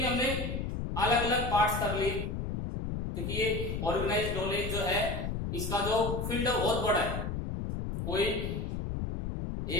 हमने अलग अलग पार्ट्स कर लिए, क्योंकि ये ऑर्गेनाइज नॉलेज जो है इसका जो फील्ड है बहुत बड़ा है। कोई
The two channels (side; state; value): left; noise; rumble, 3 dB below the sound